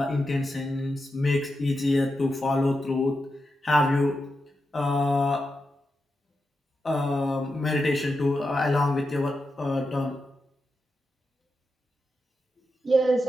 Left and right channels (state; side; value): normal; both; correlation 0.88